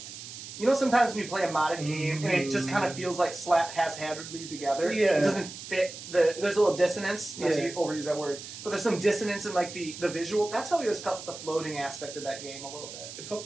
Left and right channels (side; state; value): right; noise; hiss, 12 dB below the sound